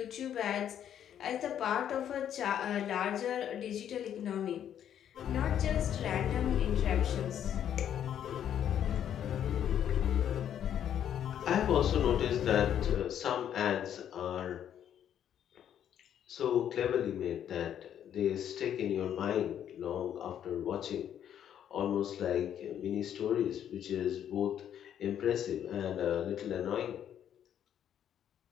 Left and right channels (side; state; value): right; quieter; 9.8 dB